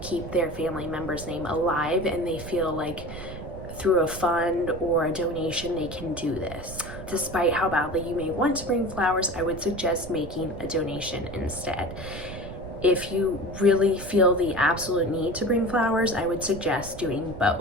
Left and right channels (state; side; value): noise; right; rumble, 12 dB below the sound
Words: their family member's name alive, and they feel like through a fund or a donation they can do this. Despite how badly you may want to bring flowers, I would suggest making a donation instead. If you really feel the absolute need to bring flowers, I would suggest doing